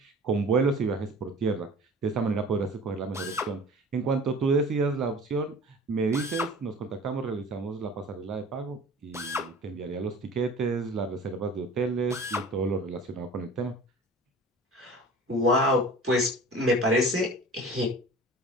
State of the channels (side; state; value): both; normal; correlation 0.42